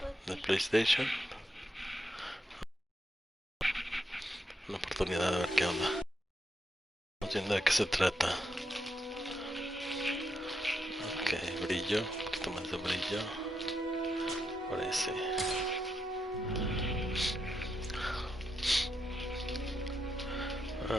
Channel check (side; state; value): both; normal; correlation 0.82